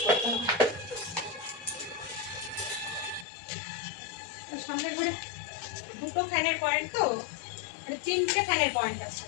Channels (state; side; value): drops out; right; at 3.2 s